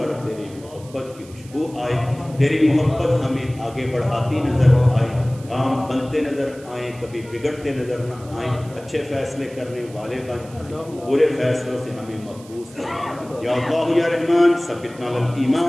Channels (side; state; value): right; noise; hiss, 23 dB below the sound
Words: تیری محبت کی خوشبو آئے، تیری محبت ہمیں آگے بڑھاتی نظر آئے، کام بنتے نظر آئیں، کبھی بگڑتے نظر نہ آئیں، اچھے فیصلے کرنے والے بن جائیں، برے فیصلوں سے ہمیں محفوظ کریں. یا اللہ یا رحمان ثبتنا علی